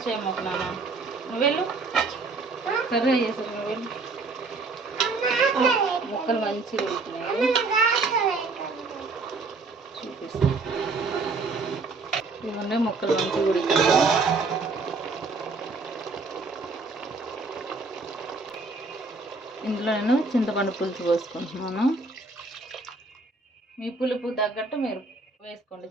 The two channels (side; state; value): left; quieter; 3.8 dB